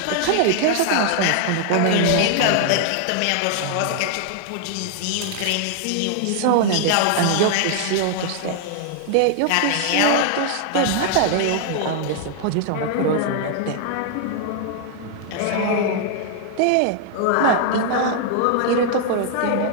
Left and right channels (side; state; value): both; different; correlation 0.00